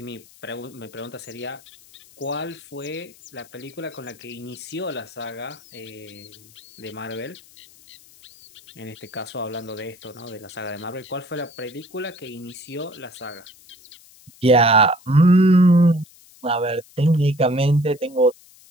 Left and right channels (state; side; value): noise; left; hiss, 24 dB below the sound